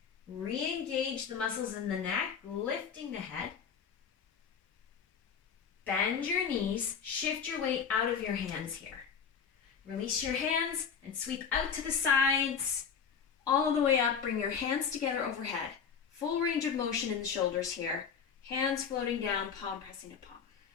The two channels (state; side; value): quieter; right; 6.8 dB